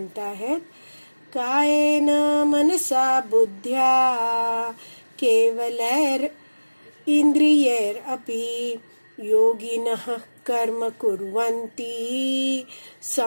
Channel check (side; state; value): both; inverted; correlation -1.00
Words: आहेत, कायेन मनसा बुद्ध्या केवलैर इंद्रियैर अपि योगिनः कर्म कुर्वन्ति